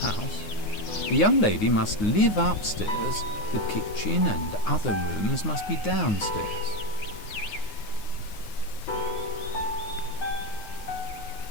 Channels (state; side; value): late; right; 9.6 ms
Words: house. The young lady must live upstairs. The kitchen and other rooms must be downstairs.